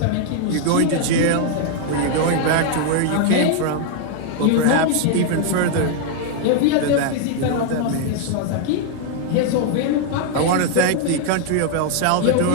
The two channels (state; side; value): different; both; correlation 0.00